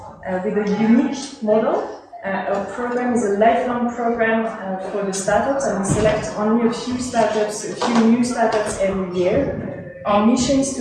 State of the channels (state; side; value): identical; both; correlation 1.00